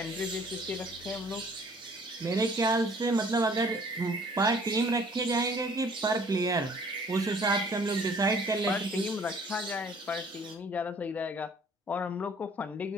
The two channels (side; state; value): both; normal; correlation 0.55